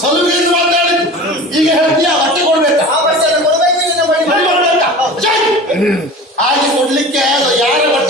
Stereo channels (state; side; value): normal; both; correlation 0.37